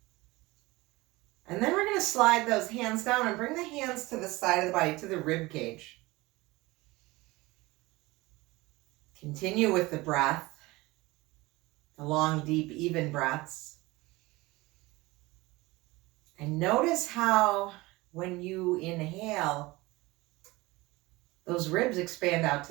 And then we're going to slide those hands down and bring the hands to the side of the body, to the rib cage. Continue with the breath, the long, deep, even breaths. And notice how when you inhale, those ribs expand out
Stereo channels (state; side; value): quieter; left; 21.3 dB